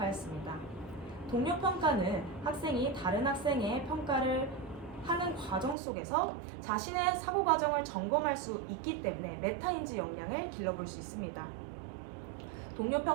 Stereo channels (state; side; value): drops out; left; at 5.8 s